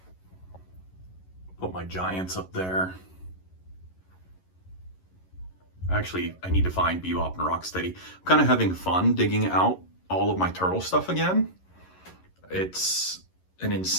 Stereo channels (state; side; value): late; right; 11 ms